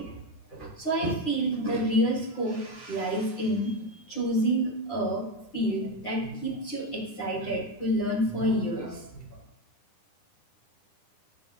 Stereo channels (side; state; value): right; late; 9.9 ms